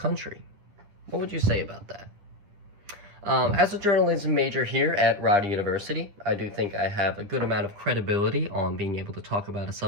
What would you say about that? As a journalism major here at Rider University, I do think I have a good amount of credibility on being able to talk about a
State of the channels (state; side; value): late; left; 9.8 ms